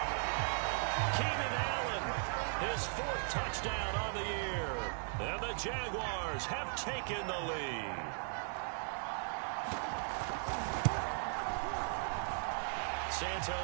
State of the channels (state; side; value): silent; left; 53 dB below the other